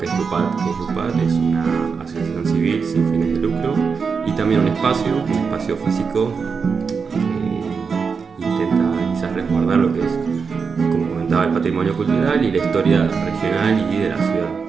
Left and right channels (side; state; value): left; quieter; 5.5 dB